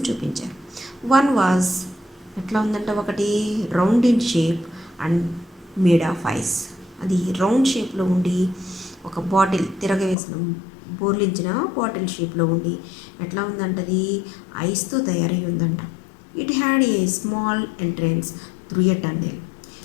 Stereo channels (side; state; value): right; drops out; at 10.2 s